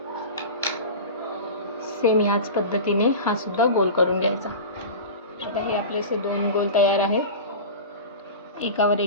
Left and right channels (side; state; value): both; inverted; correlation -0.30